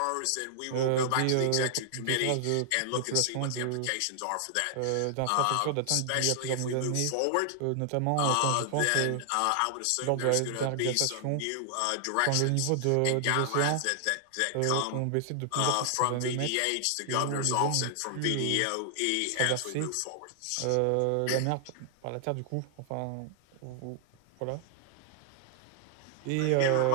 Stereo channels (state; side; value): different; both; correlation 0.00